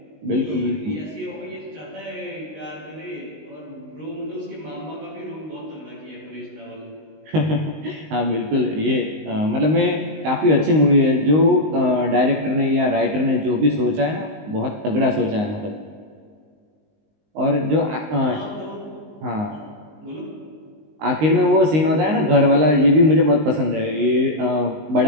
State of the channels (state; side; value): late; left; 19 ms